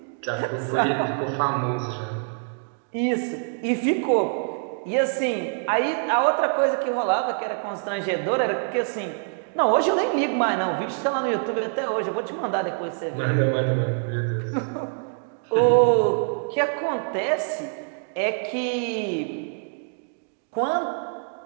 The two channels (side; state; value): left; silent; 62 dB below the other